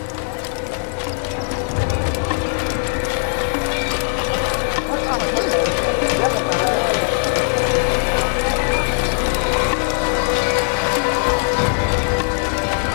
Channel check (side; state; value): right; silent; 66 dB below the other